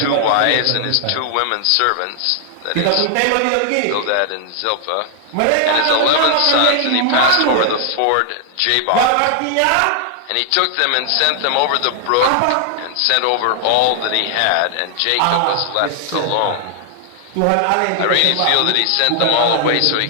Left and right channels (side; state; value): both; different; correlation 0.00